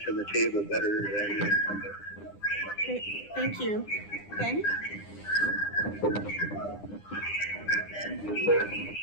to the table better than the incumbent. Great, thank you. Ben?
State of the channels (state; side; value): late; right; 9.9 ms